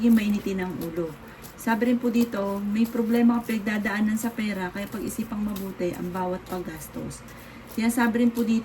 mainitin ang ulo. Sabi rin po dito, may problema ka pinagdadaanan sa pera kaya pag-isipang mabuti ang bawat paggastos. Sinasabi rin po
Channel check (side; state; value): both; identical; correlation 1.00